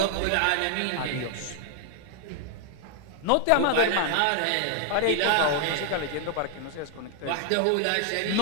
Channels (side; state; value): both; different; correlation 0.00